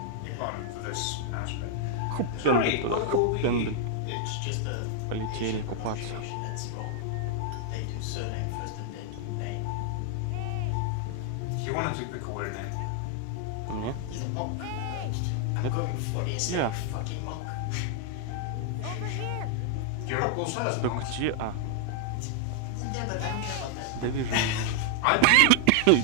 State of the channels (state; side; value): different; both; correlation 0.00